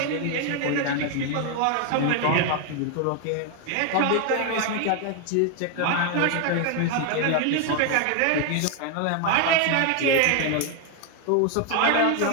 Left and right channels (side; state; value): both; different; correlation 0.00